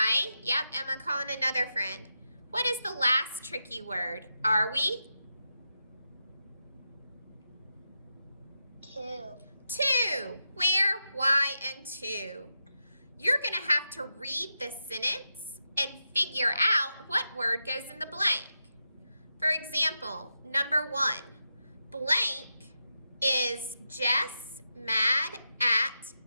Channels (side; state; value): both; inverted; correlation -0.87